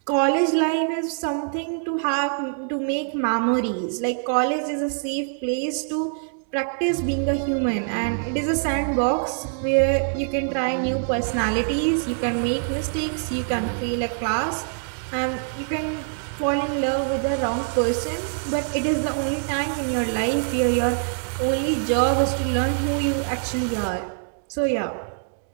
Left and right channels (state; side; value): silent; left; digital silence